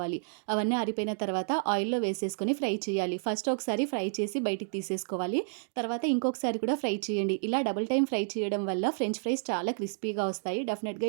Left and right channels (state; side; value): silent; left; digital silence